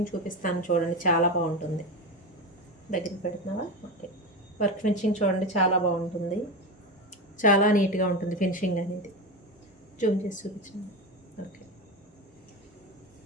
చూపిస్తాను చూడండి, చాలా బాగుంటుంది. దగ్గరికి పెడుతున్నావా? ఓకే. వర్క్ ఫినిషింగ్ చూడండి, చాలా బాగుంటుంది, చాలా నీట్గా ఉంటుంది ఫినిషింగ్ అనేది. జూమ్ చేసి చూపించండి. ఓకే.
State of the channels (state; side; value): normal; both; correlation 0.20